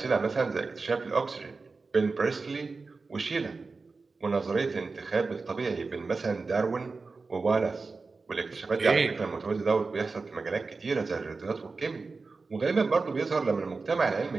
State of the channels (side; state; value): left; quieter; 4.1 dB